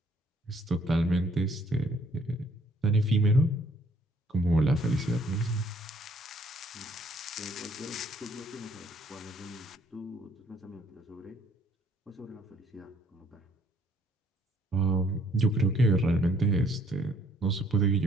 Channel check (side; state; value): both; normal; correlation 0.63